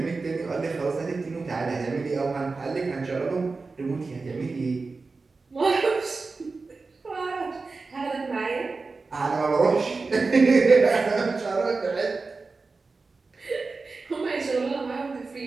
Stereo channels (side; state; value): left; quieter; 4.0 dB